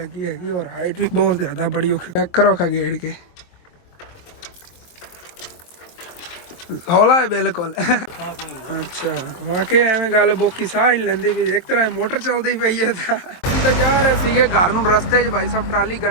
ਹੈਗੀ ਔਰ ਹਾਈਟ ਵੀ ਬਹੁਤ ਜ਼ਿਆਦਾ ਬੜੀ ਔਖੀ। ਚੈੱਕ ਕਰੋ ਖਾ ਗੇੜ ਕੇ ਹੌਲਾ ਹੈ ਬਿਲਕੁਲ। ਅੱਛਾ ਵਾਕਈ ਐਵੇਂ ਗੱਲ ਬੋਕੀ ਸਾਹ ਹੀ ਲੈਂਦੀ ਵੀ ਇੱਕ ਤਰ੍ਹਾਂ ਮੋਟਰ ਚੱਲਦੀ ਪਈ ਹੈ ਤਾਂ ਜਾ ਰਹੇ ਸੀਗੇ ਘਰ ਨੂੰ। ਰਸਤੇ 'ਚ ਭਾਈ ਸਾਹਿਬ ਟਰਾਲੀ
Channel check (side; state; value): right; late; 23 ms